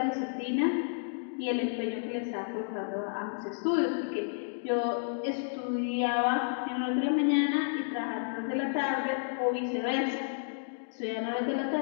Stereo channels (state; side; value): silent; right; digital silence